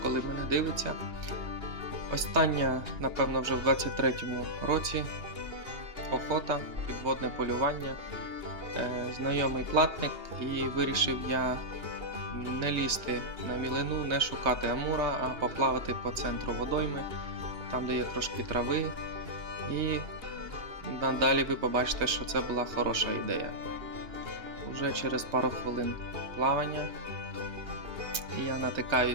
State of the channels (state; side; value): late; left; 3.3 ms